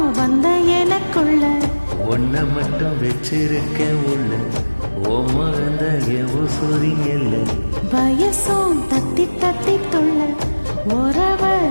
வந்த எனக்குள்ள ஒன்ன மட்டும் வச்சிருக்கேன் உள்ள ஓ மகந்த உசுரிங்கல்ல வயசும் தத்தி தத்தி தொல்ல உறவ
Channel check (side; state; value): both; inverted; correlation -1.00